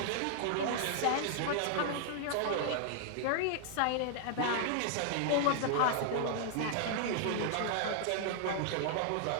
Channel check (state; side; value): different; both; correlation -0.01